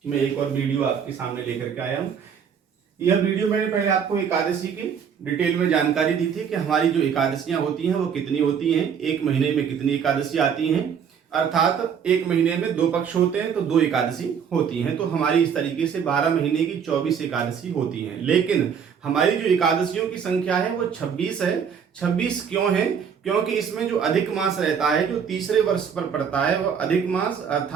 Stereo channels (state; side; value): quieter; left; 7.3 dB